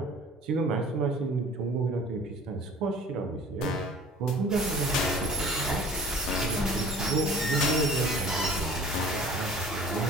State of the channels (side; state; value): both; normal; correlation 0.47